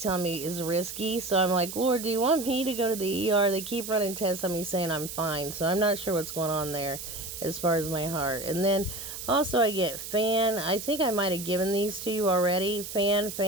telling me is risky. So I'm like, Lord, do you want me to go to the ER? They keep running tests on me saying I'm fine. So I'm not sure what's going on there as far as my heart. And then also I get fan. I think I might have given these to you already. Fan.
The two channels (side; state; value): right; noise; hiss, 9 dB below the sound